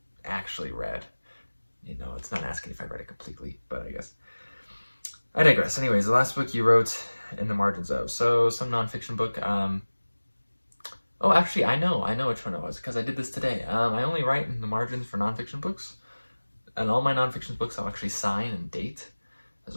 actually read. It's not asking if I read it completely, but I guess. I digress. Anyways, the last book you wrote in the margins of. So, some nonfiction book. Oh, actually, I know which one it was, because I did this today. I only write in the margins for nonfiction books, and all my nonfiction books I'll actually sign and date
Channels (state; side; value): inverted; both; correlation -1.00